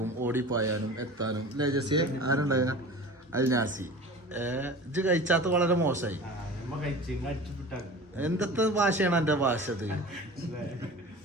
ഓടിപ്പായാനും എത്താനും അല്ലേ ജസ്സി? ആരുണ്ടായ അൽനാസി ഇത് കഴിച്ചാത്ത വളരെ മോശമായി. എന്തൊക്കെ ഭാഷയാണ് എന്റെ ഭാഷ? ഇത്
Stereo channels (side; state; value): both; normal; correlation 0.37